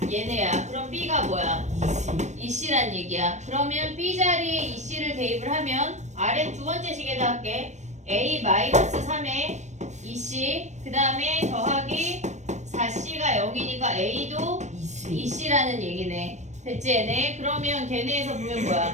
얘네야. 그럼 B가 뭐야? 2C란 얘기야. 그러면 B 자리에 2C를 대입을 하면 아래 두 번째 식에다 할게. A 마이너스 3에 2C 그 다음에 더하기 4C가 0이니까 A도 2C라는 얘기네. 됐지 얘네? 그러면 걔네에서 보면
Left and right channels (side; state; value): left; late; 0.34 ms